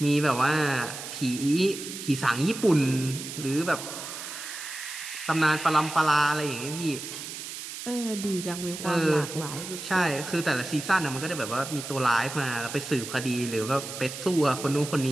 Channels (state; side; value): noise; right; hiss, 9 dB below the sound